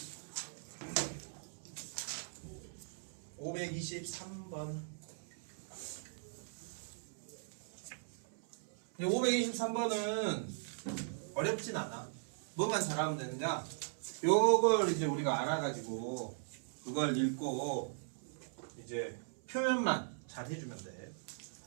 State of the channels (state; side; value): silent; left; 52 dB below the other